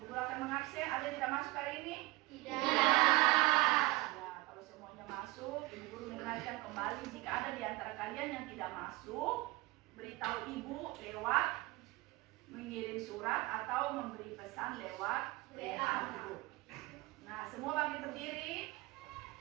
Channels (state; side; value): quieter; left; 21.3 dB